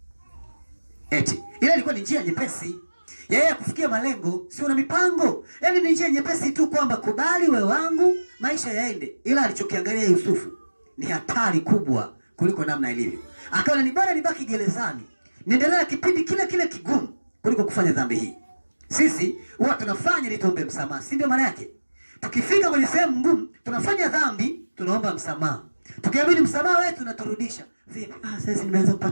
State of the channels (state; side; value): inverted; both; correlation -1.00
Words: Eti ile ilikuwa ni njia nyepesi yeye kufikia malengo, si una mipango. Yaani ni njia nyepesi tu kwamba kubali wewe wangu, maisha yaende. Ila alichokiangalia Yusufu ni hatari kubwa kuliko namna ilivyo. Akaona ni bora nibaki gerezani, niendelee kipindi kile kile kigumu kuliko kufanya dhambi hii. Sisi huwa tunafanya ili tuombe msamaha, si ndio maana yake? Tukifika kwenye sehemu ngumu, tunafanya dhambi, tunaomba msamaha. Tukiamini msamaha wetu tunaturudisha. Vipi? Sasa nimeanza